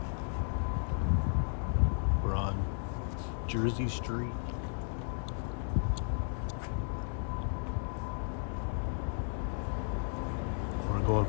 We're on Jersey Street. We're going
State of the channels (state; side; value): silent; right; digital silence